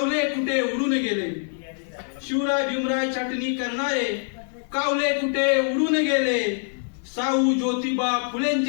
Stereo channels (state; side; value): silent; right; digital silence